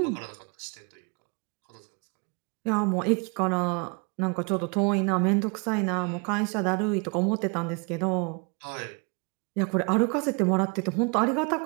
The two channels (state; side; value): quieter; left; 33.0 dB